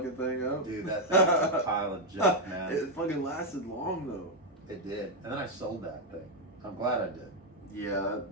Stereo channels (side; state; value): both; normal; correlation 0.02